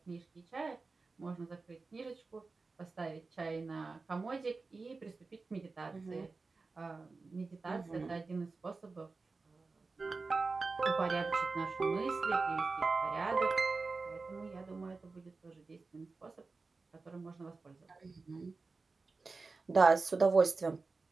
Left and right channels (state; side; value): quieter; left; 4.0 dB